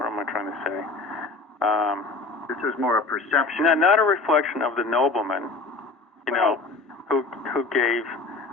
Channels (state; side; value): quieter; right; 3.7 dB